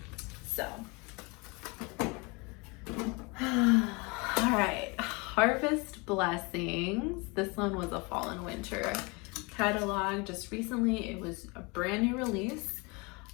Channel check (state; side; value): quieter; right; 28.3 dB